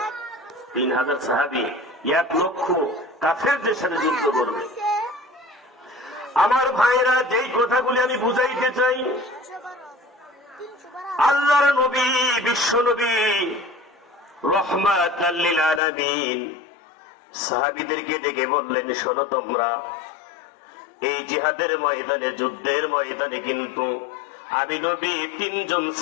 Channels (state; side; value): drops out; right; at 15.8 s